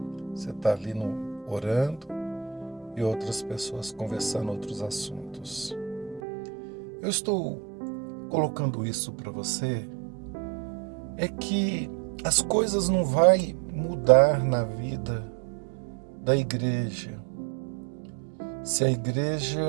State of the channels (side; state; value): left; drops out; at 6.2 s